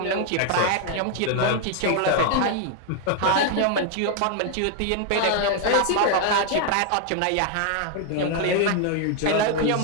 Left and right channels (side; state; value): both; different; correlation 0.00